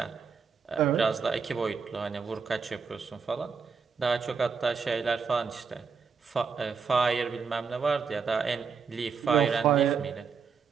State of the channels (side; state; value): left; quieter; 5.7 dB